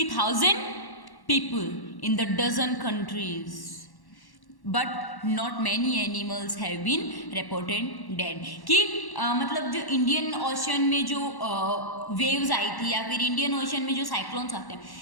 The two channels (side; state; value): right; late; 1.1 ms